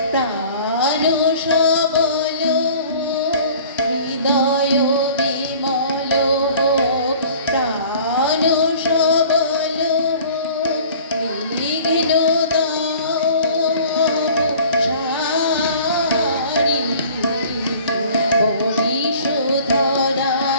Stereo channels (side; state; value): both; inverted; correlation -0.48